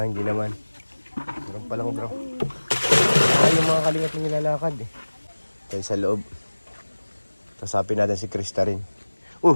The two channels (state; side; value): inverted; both; correlation -1.00